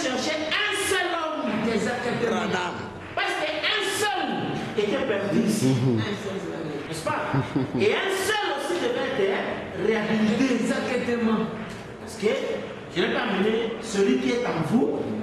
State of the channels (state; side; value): identical; both; correlation 1.00